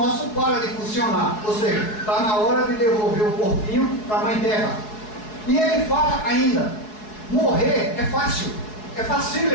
para de funcionar, ou seja, está na hora de devolver o corpinho para a Mãe Terra. E ele fala ainda: morrer é fácil, é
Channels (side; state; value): right; late; 4.7 ms